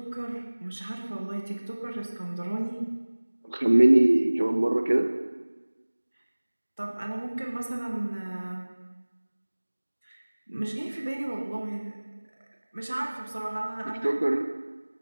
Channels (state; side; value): inverted; both; correlation -1.00